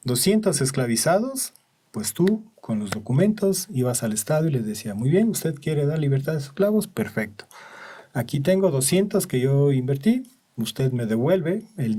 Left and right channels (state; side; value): identical; both; correlation 1.00